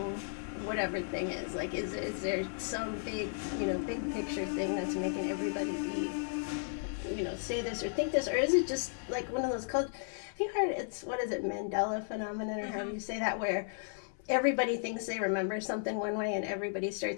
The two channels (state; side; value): silent; right; 55 dB below the other